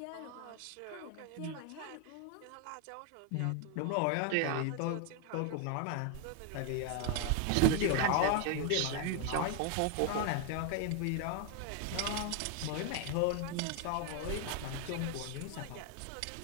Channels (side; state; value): both; different; correlation 0.01